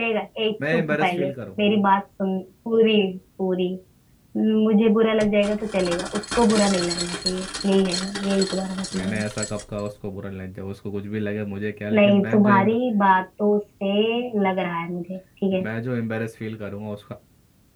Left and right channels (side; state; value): both; identical; correlation 1.00